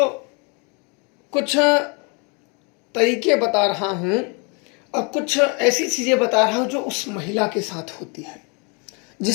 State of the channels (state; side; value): quieter; right; 33.2 dB